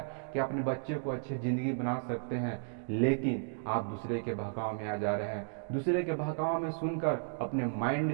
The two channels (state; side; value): silent; left; digital silence